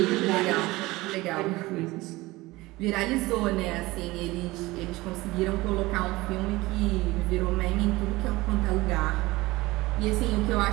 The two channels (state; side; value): quieter; left; 20.2 dB